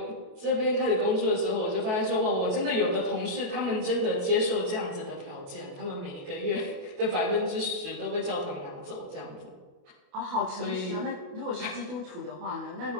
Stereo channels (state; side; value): late; left; 28 ms